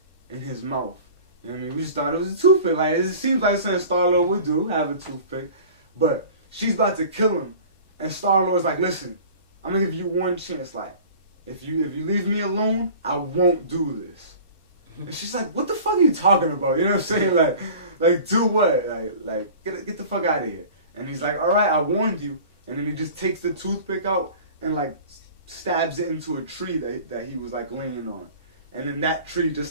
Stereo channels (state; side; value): inverted; both; correlation -0.43